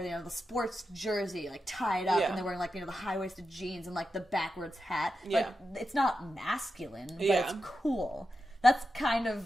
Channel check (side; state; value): both; normal; correlation 0.89